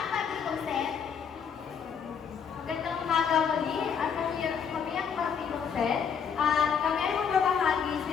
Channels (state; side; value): quieter; right; 7.0 dB